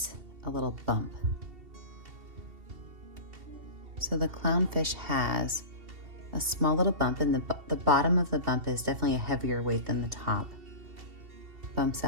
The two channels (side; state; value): left; late; 2.7 ms